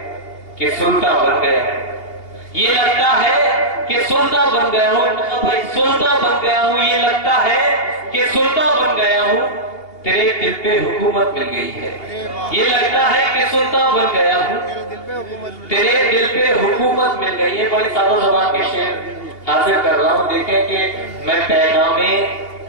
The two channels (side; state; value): right; late; 2.8 ms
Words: कि सुल्तान बन गया, ये लगता है कि सुल्तान बन गया हूँ भाई, सुल्तान बन गया हूँ। ये लगता है कि सुल्तान बन गया हूँ, तेरे दिल पे हुकूमत मिल गई है। ये लगता है कि सुल्तान बन गया हूँ, तेरे दिल पे हुकूमत मिल गई है। बड़ी सादा ज़बान के शेर हासिल कर रहा हूँ। देखें कि मैं पैगाम